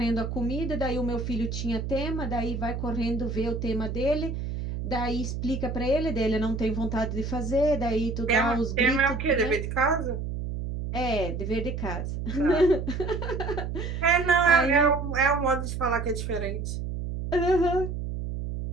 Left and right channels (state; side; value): noise; right; hum, 4 dB below the sound